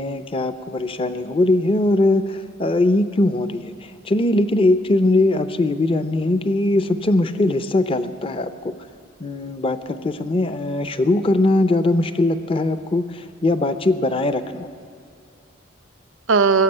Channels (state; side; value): normal; both; correlation 0.68